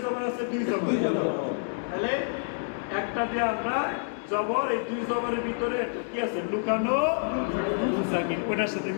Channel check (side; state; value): right; silent; 59 dB below the other